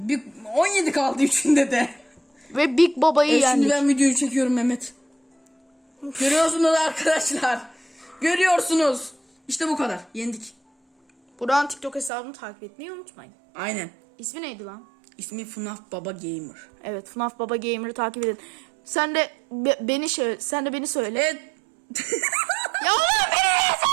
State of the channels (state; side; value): drops out; left; at 12.1 s